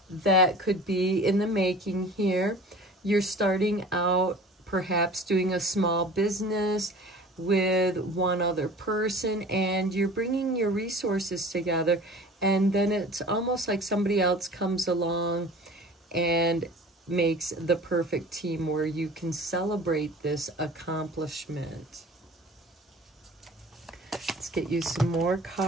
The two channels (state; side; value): normal; both; correlation 0.43